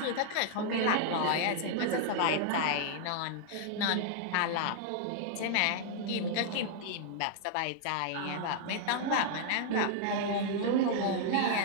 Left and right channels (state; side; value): different; both; correlation -0.01